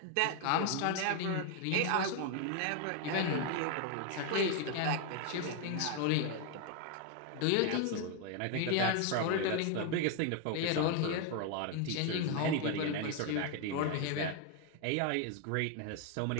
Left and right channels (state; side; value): different; both; correlation 0.01